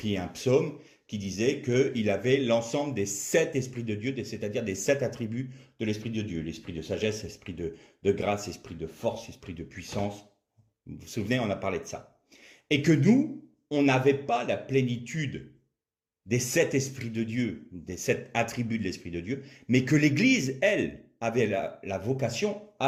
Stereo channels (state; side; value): identical; both; correlation 1.00